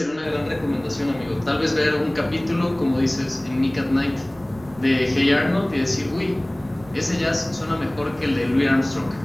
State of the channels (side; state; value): right; noise; rumble, 23 dB below the sound